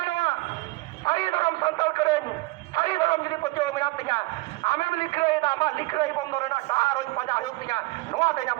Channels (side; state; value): left; quieter; 22.3 dB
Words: ᱥᱟᱹᱨᱤ ᱫᱷᱚᱨᱚᱢ ᱥᱟᱱᱛᱟᱲ ᱠᱚᱨᱮᱱ ᱥᱟᱹᱨᱤ ᱫᱷᱚᱨᱚᱢ ᱡᱩᱫᱤ ᱯᱟᱹᱛᱭᱟᱹᱣ ᱢᱮᱱᱟᱜ ᱛᱤᱧᱟ, ᱟᱢᱮᱢ ᱞᱤᱠᱷᱟᱹᱭᱮᱫᱟ, ᱟᱢᱟᱜ ᱞᱤᱠᱷᱟᱹᱭ ᱵᱚᱱᱫᱚ ᱨᱮᱱᱟᱜ ᱰᱟᱦᱟᱨ ᱦᱚᱸ ᱯᱟᱸᱡᱟ ᱦᱩᱭᱩᱜ ᱛᱤᱧᱟ, ᱱᱚᱣᱟ ᱛᱮ